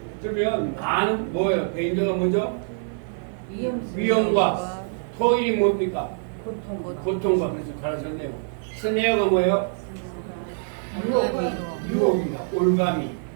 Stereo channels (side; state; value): left; silent; 55 dB below the other